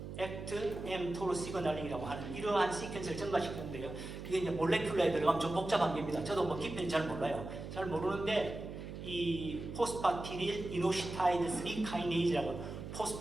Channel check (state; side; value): noise; right; hum, 9 dB below the sound